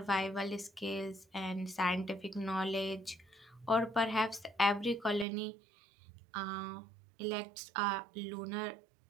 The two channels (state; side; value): drops out; left; at 5.2 s